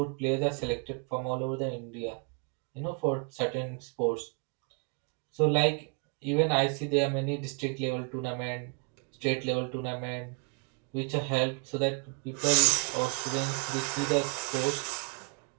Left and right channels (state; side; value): quieter; left; 37.1 dB